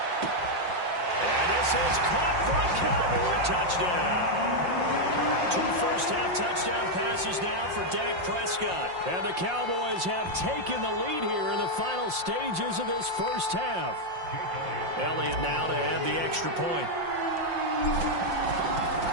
And this is caught for a Cowboy touchdown. 2 first-half touchdown passes now for Dak Prescott. And the Cowboys have taken the lead here in the final stages of this first half. Elliott now to add the extra point.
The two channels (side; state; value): left; late; 5.6 ms